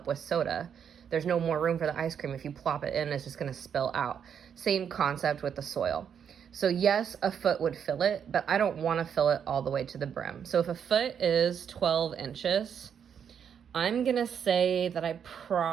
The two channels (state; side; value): quieter; left; 7.9 dB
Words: with soda. There's no more room for the ice cream. If you plop it in, it's just going to spill out. Same concept with the soil. So yes, a foot would fill it, but I don't want to fill it all the way to the brim. So if a foot is 12 inches, I'm going to say that I